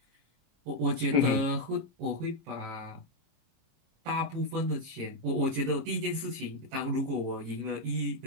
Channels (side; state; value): left; late; 26 ms